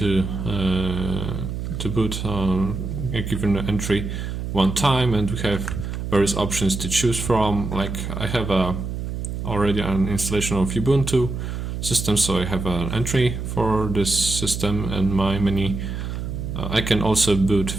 boot a given entry one time, and we have various options to choose from. Like I have already an installation of Ubuntu system, so I have an entry for this system and my menu. I can also boot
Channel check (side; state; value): right; noise; hum, 5 dB below the sound